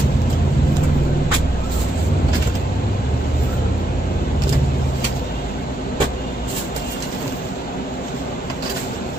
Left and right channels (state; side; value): normal; both; correlation 0.80